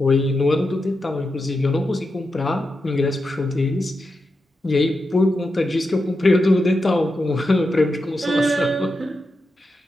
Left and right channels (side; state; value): both; normal; correlation 0.88